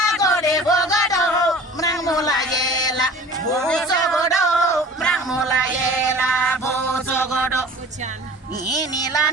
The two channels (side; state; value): both; normal; correlation 0.43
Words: gode bogodo Mrangola yela bozo godo Mrangola yela bozo godo Inila